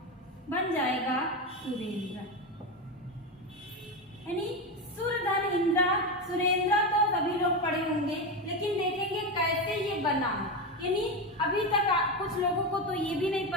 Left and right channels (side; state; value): both; normal; correlation 0.15